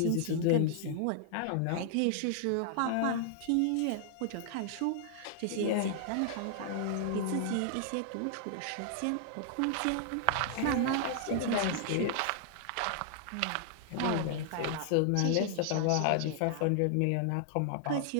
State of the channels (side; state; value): both; different; correlation 0.00